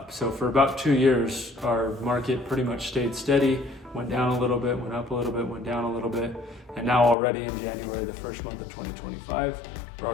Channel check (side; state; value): right; drops out; at 7.2 s